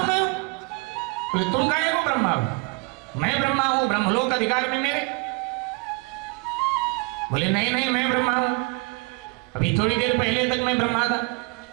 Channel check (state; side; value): quieter; left; 28.6 dB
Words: मैं हूं। बोले तुम काहे को ब्रह्मा हो? मैं ब्रह्मा हूं, ब्रह्मलोक अधिकार में मेरे। बोले नहीं नहीं मैं ब्रह्मा हूं, अभी थोड़ी देर पहले तक मैं ब्रह्मा था,